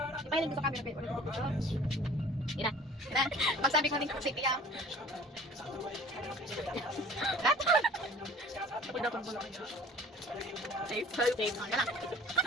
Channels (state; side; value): normal; both; correlation 0.47